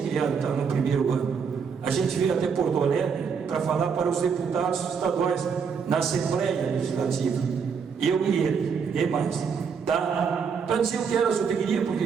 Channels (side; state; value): left; quieter; 6.2 dB